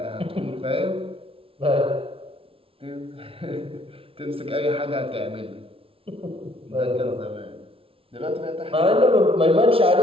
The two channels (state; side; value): late; left; 0.26 ms